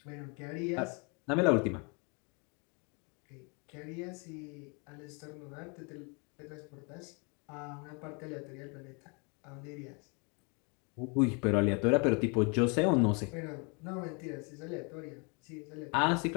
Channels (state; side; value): quieter; right; 33.6 dB